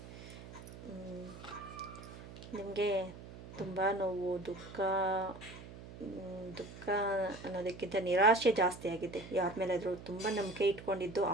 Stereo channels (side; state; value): right; noise; hum, 14 dB below the sound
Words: ನಿಮಗೆ ತುಂಬ ನೋವು, ದುಃಖ ಅನ್ನೋದಕ್ಕಿಂತ ನಿರಾಶೆ ಜಾಸ್ತಿ ಆಗಿದೆ. ಯಾರ ಮೇಲಾದರೂ ತುಂಬ ನಂಬಿಕೆ ಇಟ್ಕೊಂಡಿದ್ದು